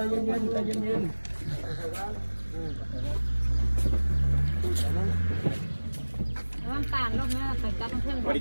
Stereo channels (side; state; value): both; inverted; correlation -1.00